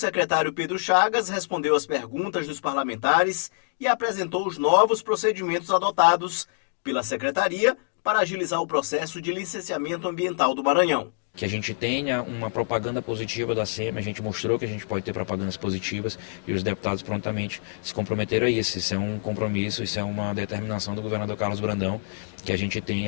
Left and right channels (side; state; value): right; silent; digital silence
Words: Pedro Chagas respondeu às perguntas dos parlamentares e apresentou os novos procedimentos adotados pela secretaria para agilizar o processo de licenciamento ambiental do Maranhão. Que a gente tenha uma propaganda positiva da SEMI, a gente mostrou que a gente pode ter propagandas positivas e os deputados prontamente se comprometeram a isso. Isso é um compromisso, isso é uma determinação do governador Carlos Brandão, que a gente